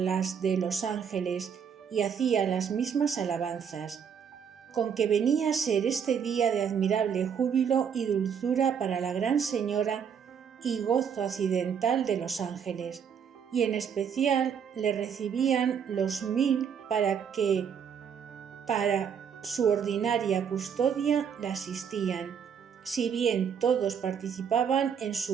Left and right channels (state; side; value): quieter; left; 7.4 dB